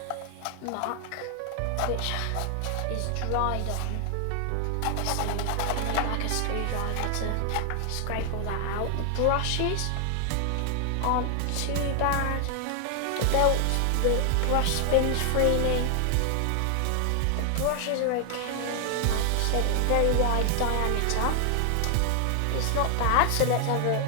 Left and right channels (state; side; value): different; both; correlation 0.00